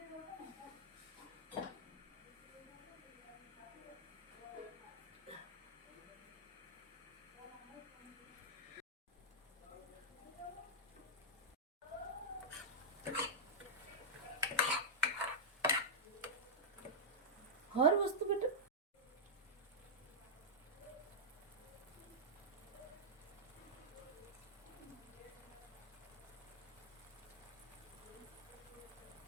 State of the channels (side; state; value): both; normal; correlation -0.07